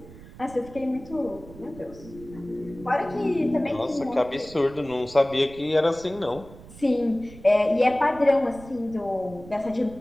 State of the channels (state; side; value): noise; right; rumble, 18 dB below the sound